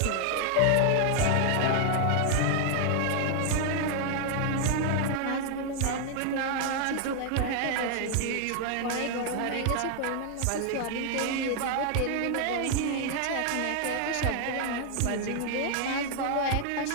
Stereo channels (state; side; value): different; both; correlation 0.00